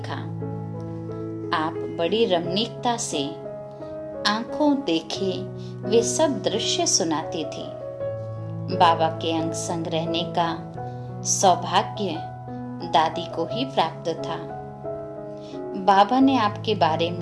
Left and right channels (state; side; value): identical; both; correlation 1.00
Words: आप बड़ी रमणीकता से आंखों देखे वे सब दृश्य सुनाती थी। बाबा के अंग संग रहने का सौभाग्य दादी को ही प्राप्त था। बाबा ने आपके बारे